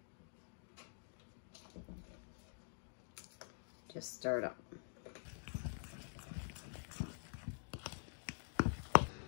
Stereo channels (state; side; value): silent; right; digital silence